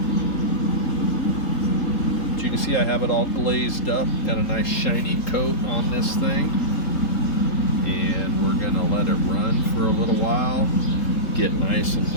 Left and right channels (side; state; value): right; late; 3.7 ms